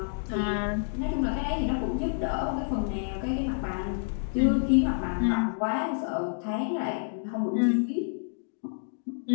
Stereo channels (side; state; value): right; silent; digital silence